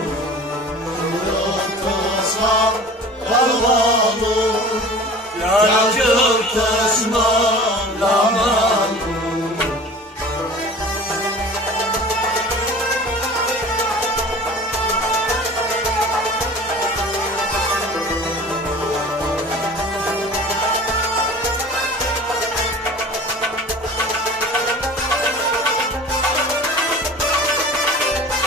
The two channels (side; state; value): both; normal; correlation 0.41